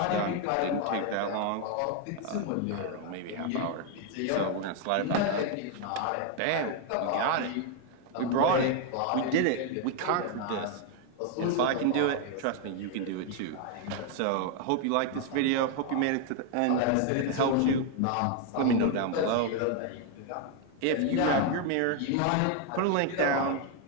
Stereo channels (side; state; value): both; different; correlation 0.01